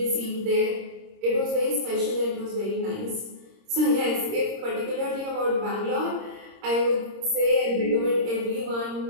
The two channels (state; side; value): late; left; 26 ms